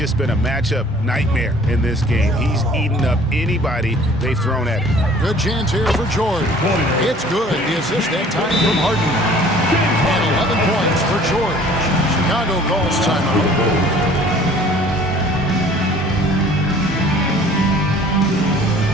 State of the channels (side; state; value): both; normal; correlation 0.52